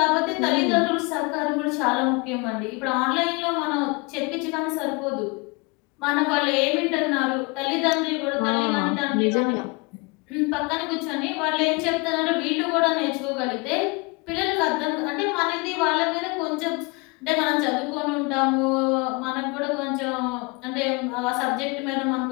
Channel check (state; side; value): quieter; right; 28.5 dB